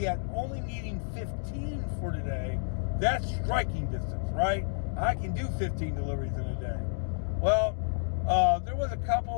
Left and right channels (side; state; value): right; silent; digital silence